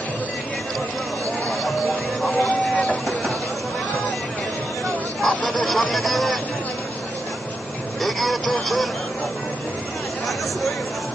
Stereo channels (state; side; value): normal; both; correlation 0.86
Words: আপনাদের সামনে দিয়ে এগিয়ে চলছেন